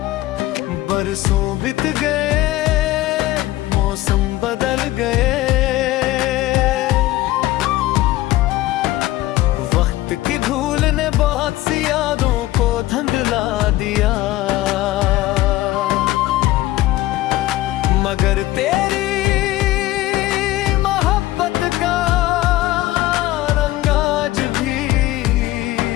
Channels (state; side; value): quieter; right; 16.5 dB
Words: बरसों बीत गए, मौसम बदल गए, वक्त की धूल ने बहुत सी यादों को धुंधला दिया, मगर तेरी मोहब्बत का रंग आज भी